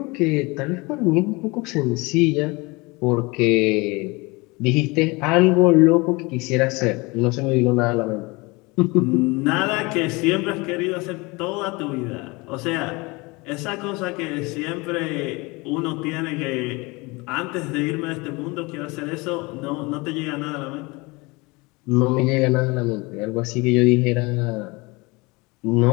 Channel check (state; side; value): quieter; right; 25.4 dB